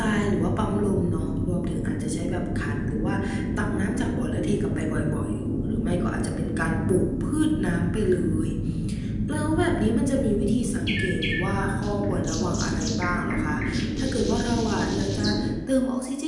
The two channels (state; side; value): identical; both; correlation 1.00